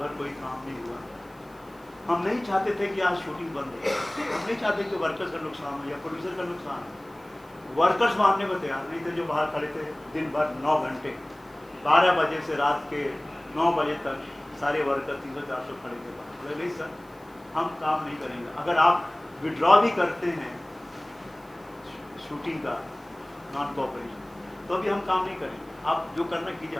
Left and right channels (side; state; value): right; noise; hiss, 29 dB below the sound